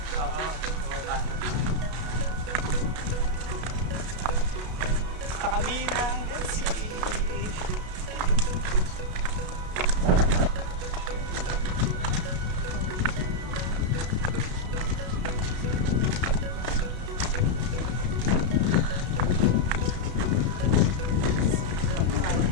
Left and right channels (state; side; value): late; left; 33 ms